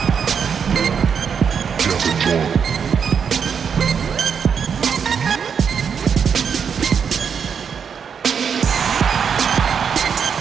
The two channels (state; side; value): quieter; left; 6.9 dB